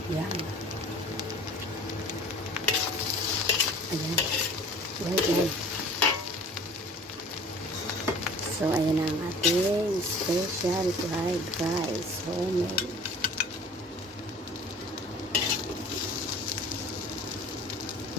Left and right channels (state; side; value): normal; both; correlation 0.46